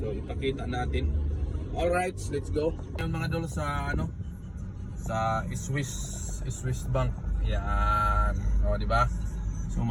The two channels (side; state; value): both; identical; correlation 1.00